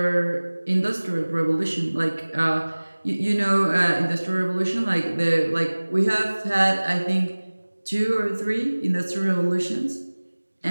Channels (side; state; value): both; inverted; correlation -1.00